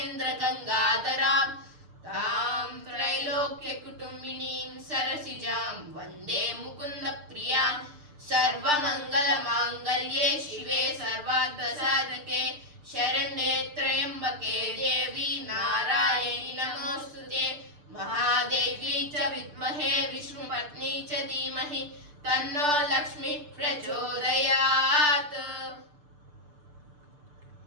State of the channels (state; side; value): late; left; 6.7 ms